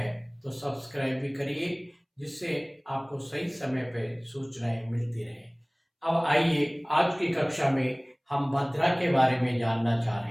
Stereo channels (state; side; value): identical; both; correlation 1.00